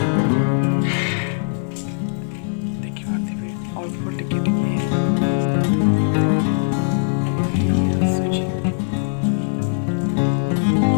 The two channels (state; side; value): silent; right; 58 dB below the other